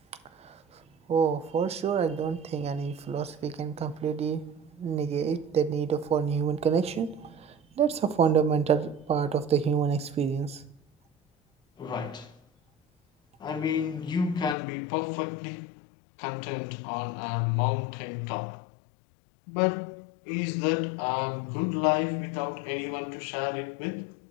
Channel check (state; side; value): drops out; right; at 14.6 s